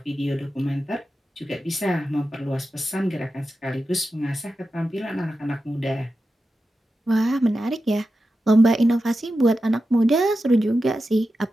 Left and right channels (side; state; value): both; normal; correlation 0.91